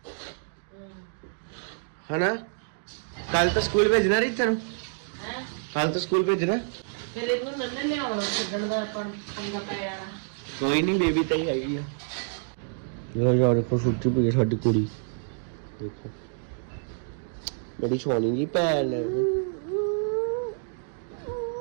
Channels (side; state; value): left; silent; digital silence